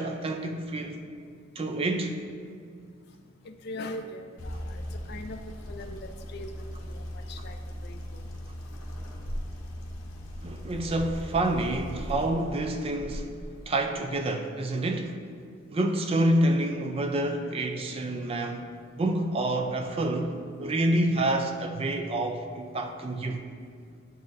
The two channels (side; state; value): both; normal; correlation 0.57